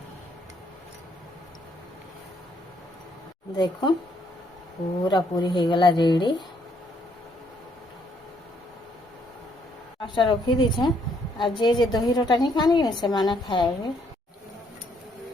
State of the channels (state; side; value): normal; both; correlation 0.70